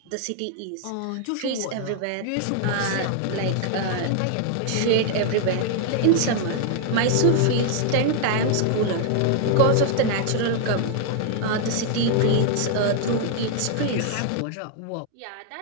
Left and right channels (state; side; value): different; both; correlation 0.00